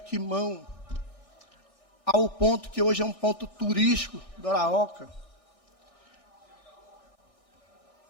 ao ponto que hoje é um ponto turístico da Araoca.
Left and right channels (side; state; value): right; late; 3.4 ms